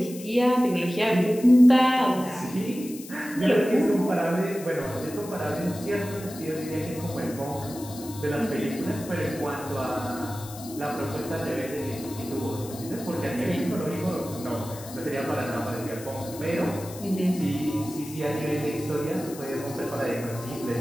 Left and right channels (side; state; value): left; noise; hiss, 15 dB below the sound